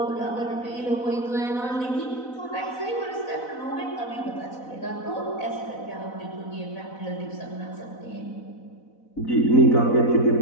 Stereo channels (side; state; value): right; late; 4.0 ms